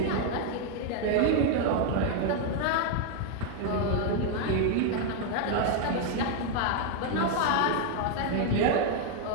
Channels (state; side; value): different; both; correlation 0.00